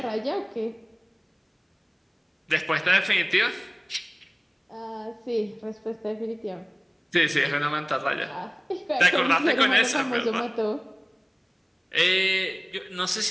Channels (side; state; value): both; identical; correlation 1.00